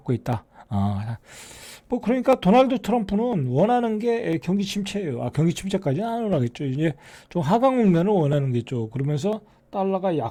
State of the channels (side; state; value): both; identical; correlation 1.00